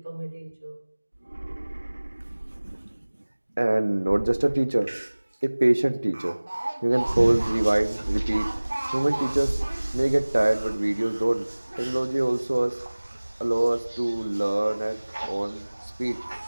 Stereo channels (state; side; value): inverted; both; correlation -1.00